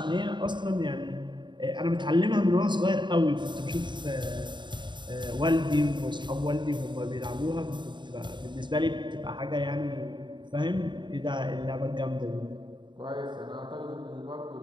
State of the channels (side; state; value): left; late; 0.22 ms